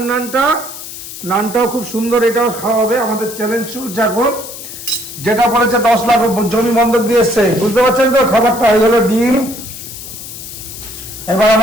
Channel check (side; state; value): left; noise; hiss, 12 dB below the sound